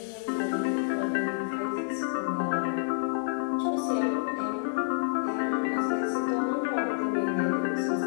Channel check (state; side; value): silent; right; digital silence